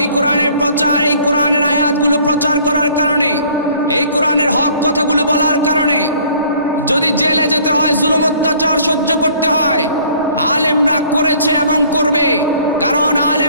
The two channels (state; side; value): inverted; both; correlation -0.56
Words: কোরআনের প্রচার, এই কোরআনের আয়াতগুলো প্রচার করার কারণে, এই কোরআনের হক কথাগুলো বলার কারণে যদি জেলে যেতে হয়, জুলুম অত্যাচার সহ্য করতে হয়, আলেমরা করেছে এবং করবে। কারণ